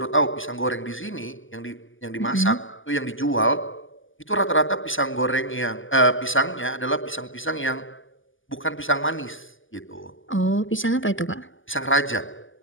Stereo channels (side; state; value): right; late; 0.58 ms